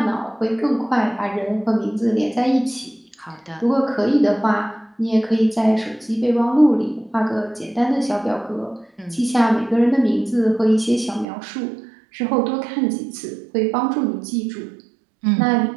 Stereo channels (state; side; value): drops out; left; at 11.2 s